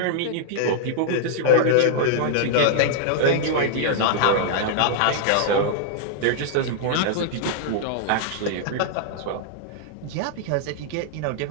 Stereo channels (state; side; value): different; both; correlation -0.01